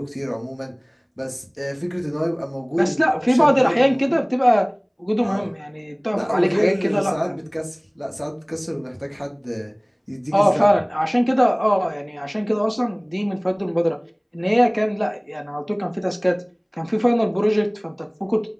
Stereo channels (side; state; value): both; identical; correlation 1.00